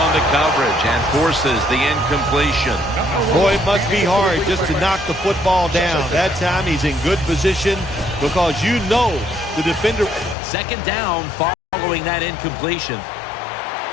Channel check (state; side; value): drops out; right; at 10.4 s